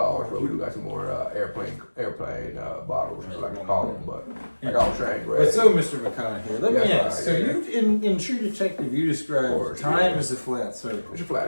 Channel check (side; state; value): both; inverted; correlation -1.00